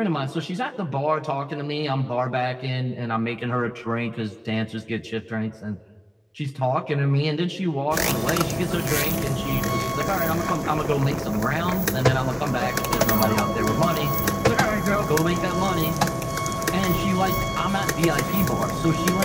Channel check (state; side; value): identical; both; correlation 1.00